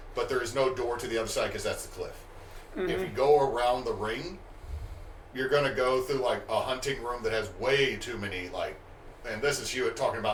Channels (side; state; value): both; identical; correlation 1.00